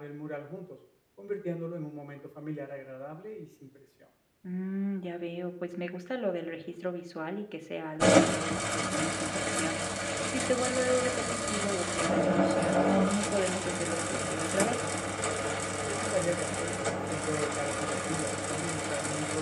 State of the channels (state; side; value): identical; both; correlation 1.00